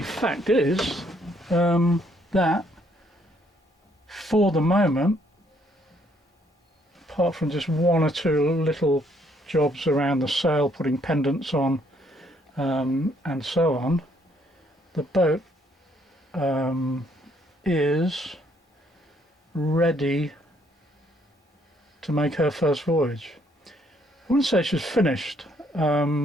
fact is that for the moment, apart from just 1 or 2 little jobs around the sail, putting pendants on and so on, the boat is ready to make her first voyage. I wouldn't say she's finished.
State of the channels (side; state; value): both; normal; correlation 0.68